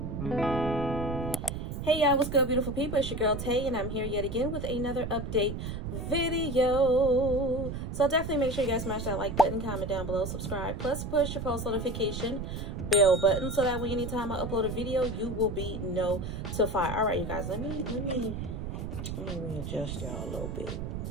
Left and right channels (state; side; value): noise; right; rumble, 5 dB below the sound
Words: Hey y'all, what's good, beautiful people? It's your girl Tay, and I'm here yet again with another update video. So definitely make sure you guys smash that like button, comment down below, subscribe, plus push your post notification bell button so that way anytime I upload a video, you will be notified. All right, you guys, let me readjust y'all a little bit.